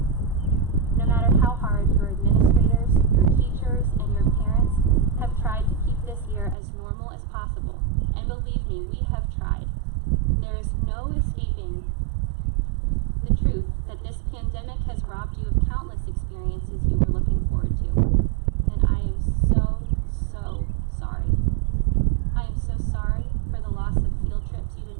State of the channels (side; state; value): left; drops out; at 6.6 s